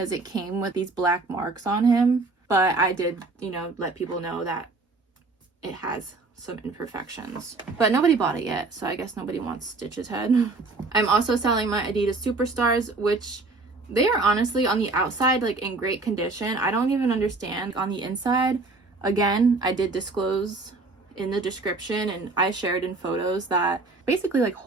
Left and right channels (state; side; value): quieter; left; 3.5 dB